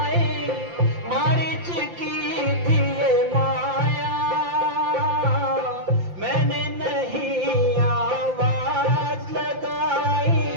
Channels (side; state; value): left; late; 5.8 ms